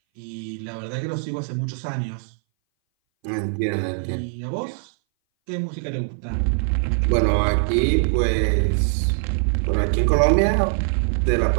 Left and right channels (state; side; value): silent; left; 60 dB below the other